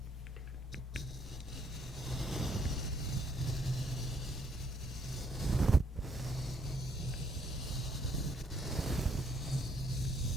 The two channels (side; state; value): both; normal; correlation 0.69